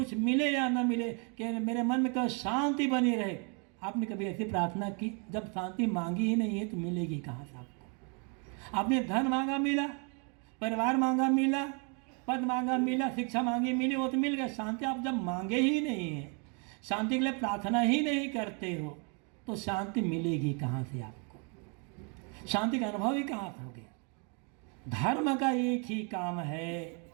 मिले या ना मिले कि मेरे मन में कभी शांति बनी रहे। आपने कभी ऐसी प्रार्थना की? जब शांति मांगी ही नहीं है तो मिलेगी कहाँ से आपको? आपने धन मांगा मिला, परिवार मांगा मिला, पद मांगा मिला, शिक्षा मांगी मिली, वो तो मिल गया। शांति आप जब मांगे ही नहीं है, शांति के लिए प्रार्थना ही नहीं करते हो, तो शांति मिलेगी कहाँ से आपको? शांति का अनुभव ही कहाँ से हो गया? धर्म का एक ही काम है,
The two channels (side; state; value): left; quieter; 36.9 dB